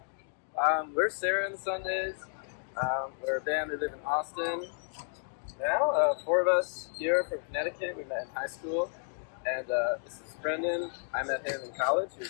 We're Sarah and the Sundays. We're a band that live in Austin. Now, four of us here from Connecticut. We met in high school. And this is Brendan. I met him in college. He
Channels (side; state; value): right; silent; digital silence